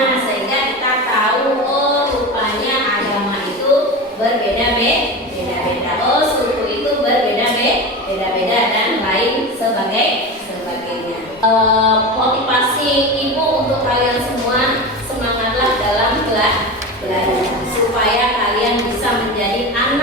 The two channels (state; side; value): normal; both; correlation 0.25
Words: sehingga kita tahu, oh rupanya agama itu berbeda-beda. Oh, suku itu berbeda-beda dan lain sebagainya. Motivasi Ibu untuk kalian semua, semangatlah dalam belajar supaya kalian bisa menjadi